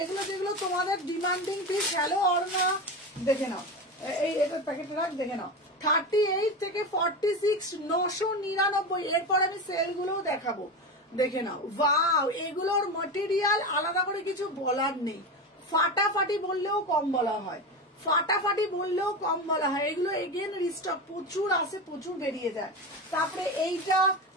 তোমাদের ডিমান্ডিং পিস। হ্যালো অর্ণা, দেখে নাও। এই এটা প্যাকেটে রাখ, দেখে নাও। 38 থেকে 46, 999। এরপর আমি সেল গুলোও দেখাবো, দেখে নাও। ওয়াও, এগুলোর ম্যাটেরিয়াল আলাদা করে কিছু বলার নেই। ফাটাফাটি বললেও কম বলা হয়, ফাটাফাটি বললেও কম বলা হয়। এগুলো এগেন রিস্টক, প্রচুর আসে, প্রচুর বেরিয়ে যায়। তারপরে এইটা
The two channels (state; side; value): normal; both; correlation 0.21